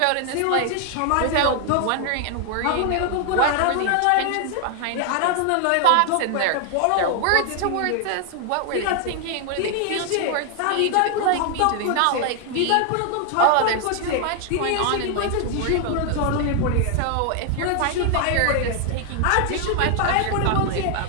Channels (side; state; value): both; different; correlation 0.00